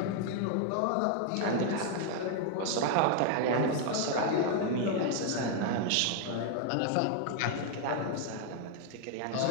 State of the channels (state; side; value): different; both; correlation 0.00